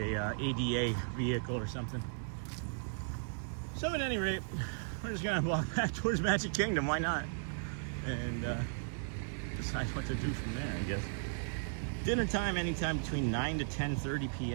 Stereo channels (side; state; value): left; silent; digital silence